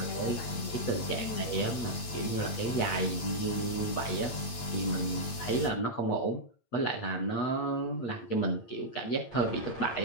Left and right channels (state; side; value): late; right; 8.8 ms